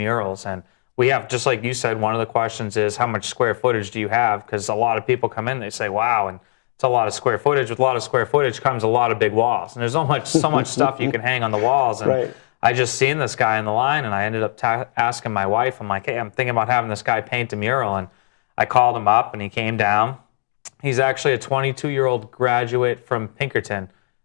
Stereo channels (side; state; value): right; silent; digital silence